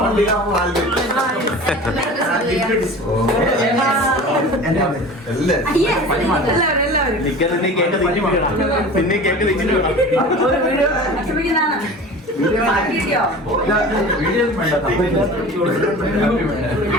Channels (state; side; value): normal; both; correlation 0.38